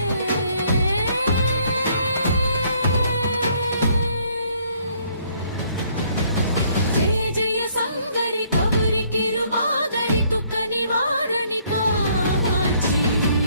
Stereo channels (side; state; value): both; inverted; correlation -0.65